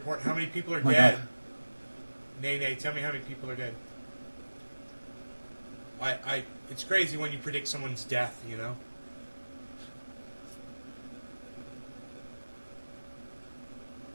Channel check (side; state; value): both; inverted; correlation -1.00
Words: How many people are My dead? God. Nay, tell me how many people are dead. It's crazy when you predict someone's death, you know?